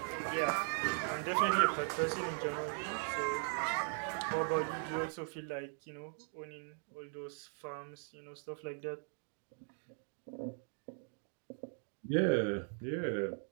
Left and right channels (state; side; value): silent; left; 52 dB below the other